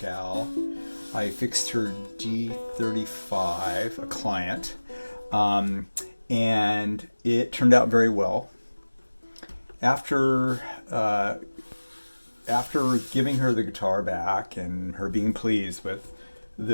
I fixed her D35, a client, um, and it turned out very well. After uh, after giving her the guitar back and her being pleased with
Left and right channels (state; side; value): inverted; both; correlation -1.00